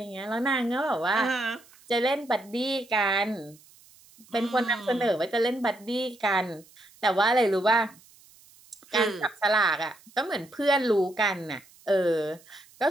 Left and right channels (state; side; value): noise; right; hiss, 26 dB below the sound